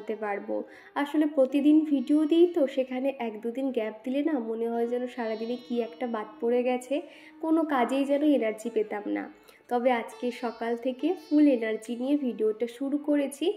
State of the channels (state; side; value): identical; both; correlation 1.00